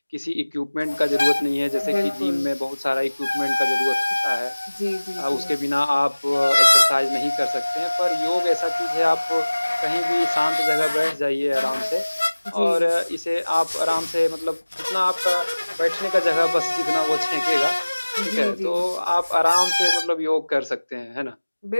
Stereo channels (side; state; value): both; inverted; correlation -1.00